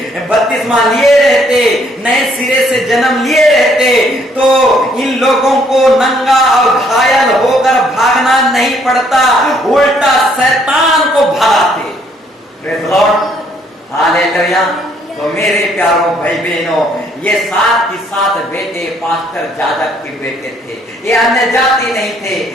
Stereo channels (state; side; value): normal; both; correlation 0.66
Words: बपतिस्मा लिए रहते, नए सिरे से जन्म लिए रहते, तो इन लोगों को नंगा और घायल होकर भागना नहीं पड़ता, उल्टा शैतान को भगाते। Praise Lord, hallelujah. तो मेरे प्यारों भाई बहनों, ये 7 की 7 बेटे पास्टर जाजक के बेटे थे। ये अन्य जाति नहीं थे,